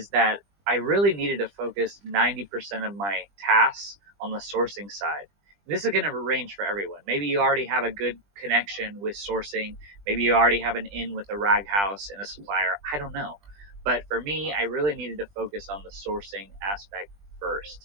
that I really needed to focus 90% of my tasks on the sourcing side. This is going to range for everyone. Maybe you already have a good connection with sourcing. Maybe you already have an in with a rag house and a supplier. I don't know. But for me, I really needed to focus on the sourcing aspect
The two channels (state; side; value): late; left; 20 ms